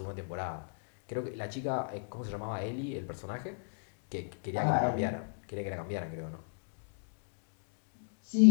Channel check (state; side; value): silent; right; digital silence